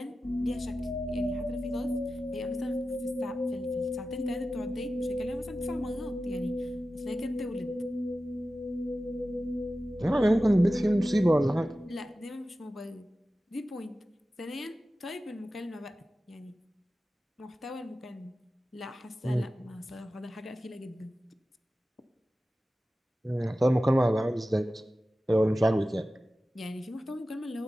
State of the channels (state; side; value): normal; both; correlation 0.94